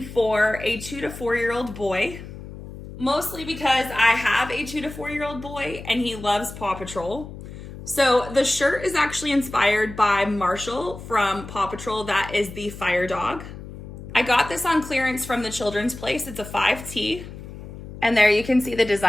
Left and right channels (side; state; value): left; noise; hum, 13 dB below the sound